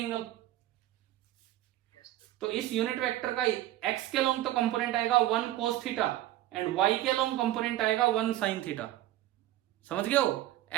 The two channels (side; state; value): left; quieter; 14.6 dB